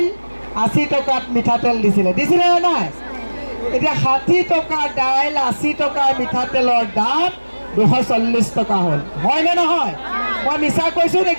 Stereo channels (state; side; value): inverted; both; correlation -1.00